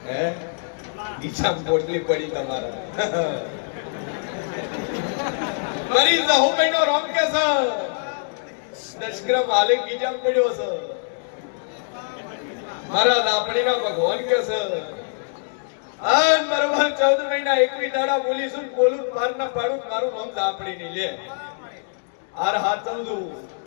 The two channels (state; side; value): silent; right; digital silence